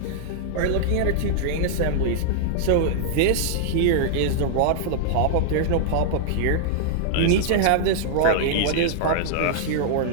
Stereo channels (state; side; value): different; both; correlation -0.01